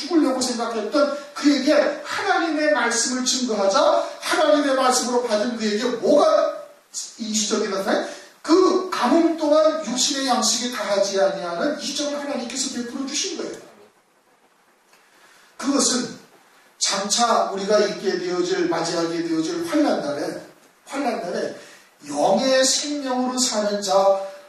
생각했던 그에게 하나님의 말씀을 증거하자 하나님의 말씀으로 받은 그에게 뭐가 이적이 나타나요? 그 가뭄 동안 육신의 양식이 다하지 아니하는 이적을 하나님께서 베풀어 주신 거예요. 그것은 장차 우리가 맞이하게 되어질 환난날에 영의 생명으로 사는 자,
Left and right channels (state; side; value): identical; both; correlation 1.00